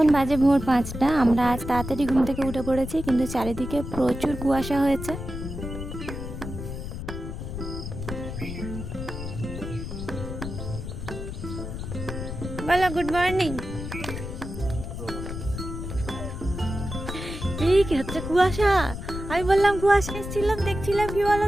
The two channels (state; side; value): noise; left; rumble, 7 dB below the sound